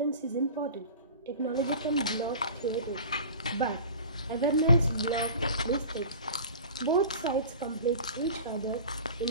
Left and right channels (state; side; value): inverted; both; correlation -0.39